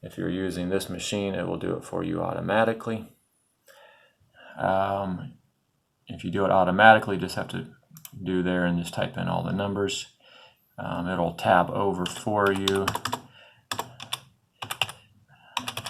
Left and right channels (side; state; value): both; identical; correlation 1.00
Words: if you're using this machine, it will do it for you automatically. If you do it automatically, just have to do there and just type in all the numbers. It'll tab over for you.